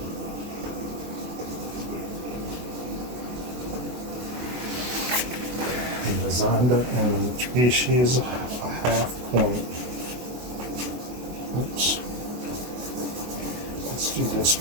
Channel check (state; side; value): late; left; 24 ms